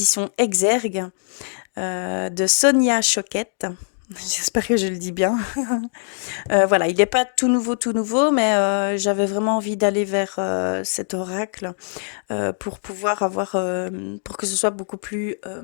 Exergue de Sonia Choquette. J'espère que je le dis bien. Voilà, il n'est pas tout nouveau, mais j'avais vraiment envie d'aller vers cet oracle pour pouvoir avoir, pour que ce soit beaucoup plus,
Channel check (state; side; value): silent; right; digital silence